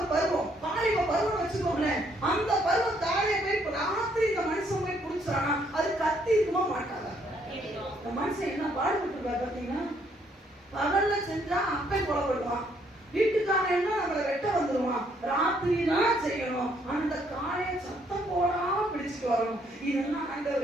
பருவம், பாலிவ பருவம் வச்சுக்கோங்களேன். அந்த பருவம் காளையை போய் ராத்திரி இந்த மனுஷன் போய் பிடிச்சானா அது கத்தி இருக்குமா மாட்டாதா? இந்த மனுஷன் என்ன பாடுபட்டு பாத்தீங்கன்னா, பகல்ல செஞ்சா அப்பே கொலைப்படுவான், வீட்டுக்காரன் என்ன நம்மளை வெட்ட வந்துருவான், ராத்திரி தான் செய்யணும். அந்த காளையை சத்தம் போடாம பிடிச்சிட்டு வரணும். இதெல்லாம்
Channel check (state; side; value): normal; both; correlation 0.69